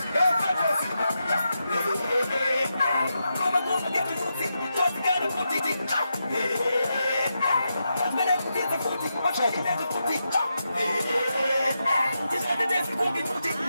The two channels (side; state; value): both; inverted; correlation -0.86